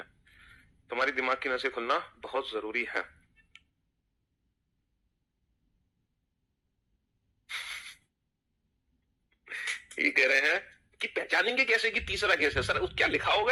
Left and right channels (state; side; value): identical; both; correlation 1.00